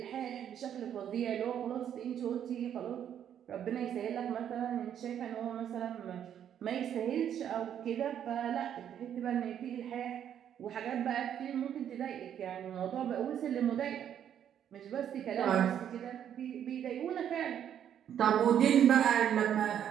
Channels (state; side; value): quieter; left; 9.5 dB